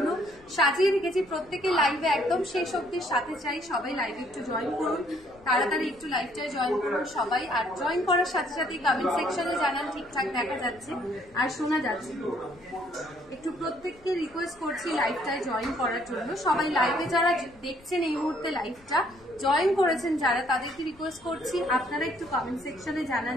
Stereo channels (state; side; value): noise; left; rumble, 26 dB below the sound